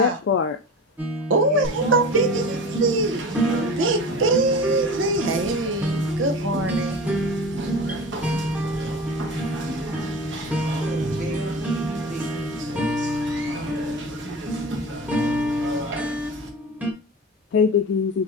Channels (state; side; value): normal; both; correlation 0.32